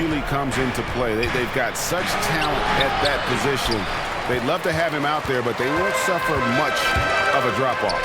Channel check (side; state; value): both; identical; correlation 1.00